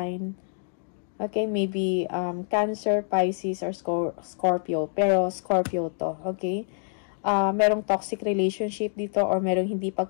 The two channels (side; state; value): right; silent; digital silence